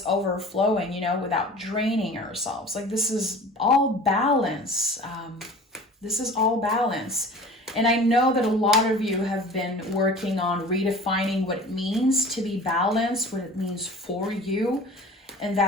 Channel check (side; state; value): both; normal; correlation 0.41